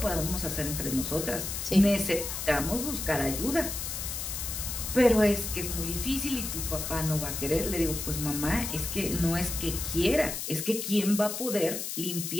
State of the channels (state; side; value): noise; left; hiss, 5 dB below the sound